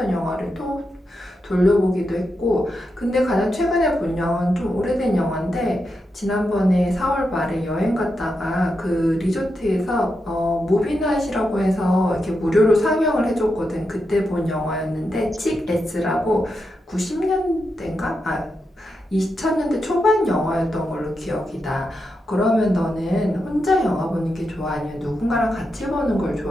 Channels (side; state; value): both; normal; correlation 0.86